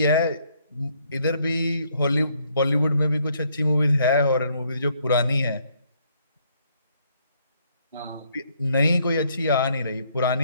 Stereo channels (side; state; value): both; inverted; correlation -0.69